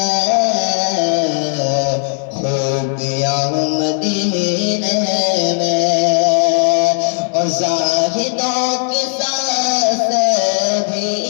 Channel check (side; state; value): right; silent; 59 dB below the other